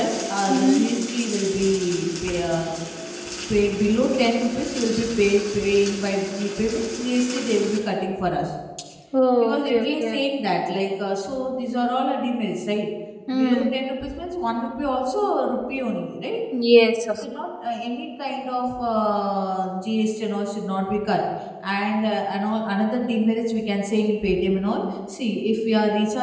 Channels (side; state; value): both; identical; correlation 1.00